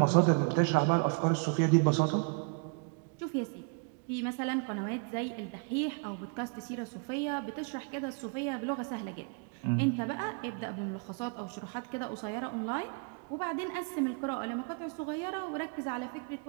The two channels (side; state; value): left; quieter; 36.8 dB